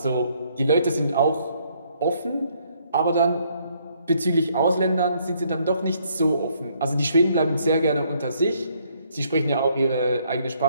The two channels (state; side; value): inverted; both; correlation -0.68